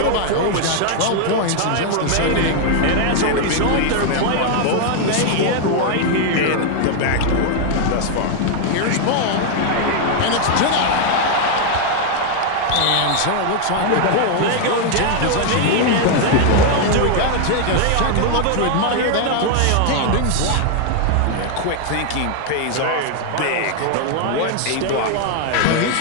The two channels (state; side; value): different; both; correlation 0.00